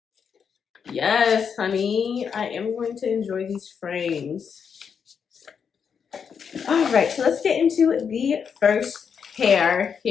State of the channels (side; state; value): right; quieter; 6.7 dB